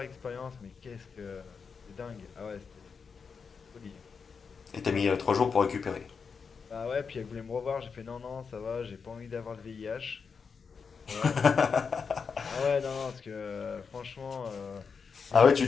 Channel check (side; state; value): right; quieter; 5.6 dB